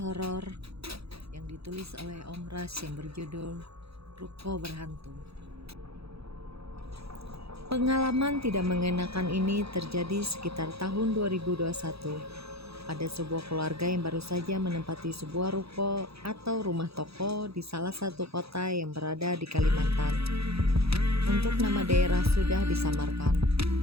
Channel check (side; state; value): left; late; 0.77 ms